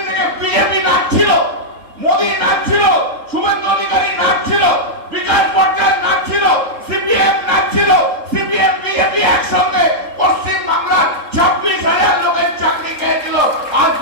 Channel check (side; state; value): left; late; 3.7 ms